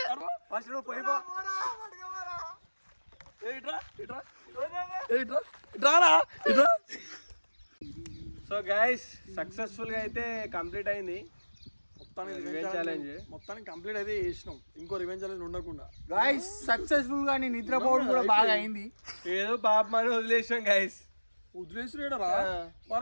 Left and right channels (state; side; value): inverted; both; correlation -1.00